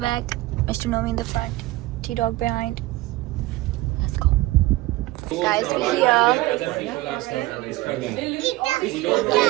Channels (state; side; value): quieter; left; 18.7 dB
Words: Mr. Nomi in the front, T-Dog behind. Let's go. Guys, we're here.